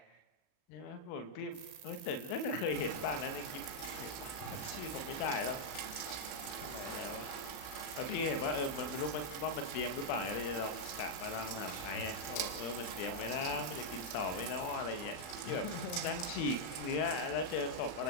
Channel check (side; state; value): right; late; 40 ms